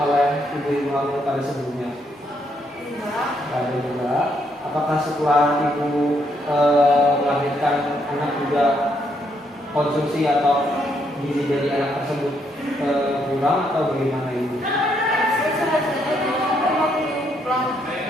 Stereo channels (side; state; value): both; normal; correlation 0.74